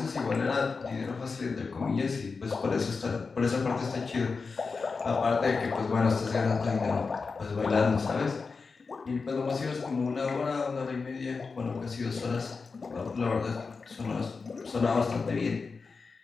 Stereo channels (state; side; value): quieter; right; 4.6 dB